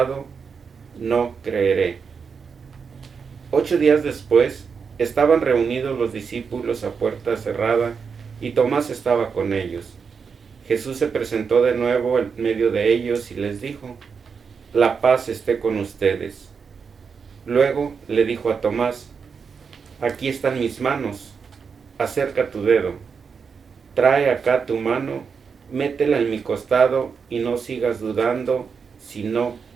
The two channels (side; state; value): left; quieter; 5.9 dB